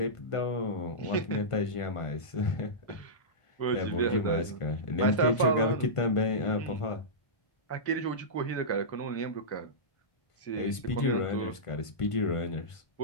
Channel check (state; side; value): late; right; 1.5 ms